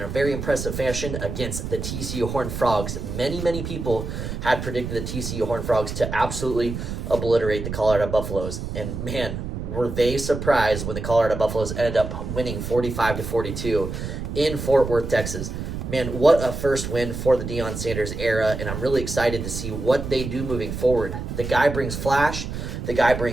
very impressive fashion against the TCU Horned Frogs. Many people had predicted the TCU Horned Frogs to absolutely obliterate the Colorado Buffaloes, and man, were they surprised when the Colorado Buffaloes ended up winning 45-42 in Fort Worth, Texas. Man, what a first win for the Deion Sanders era, and I'm really excited to see what they do moving forward. The guy brings flash, the guy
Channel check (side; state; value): right; noise; rumble, 6 dB below the sound